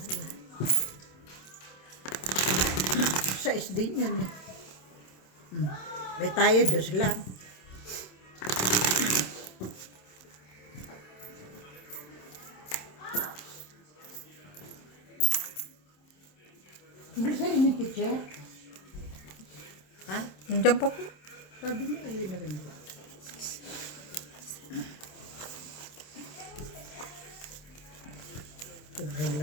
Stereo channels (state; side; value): late; right; 27 ms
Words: Sa SD yun. May tayo, 2 lang. Hindi sa rin yung teacher. Ha? Nandiyan pa po. Sabi niya, ayun na rin. Sobrang